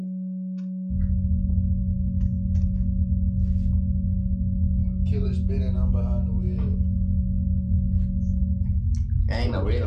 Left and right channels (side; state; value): both; identical; correlation 1.00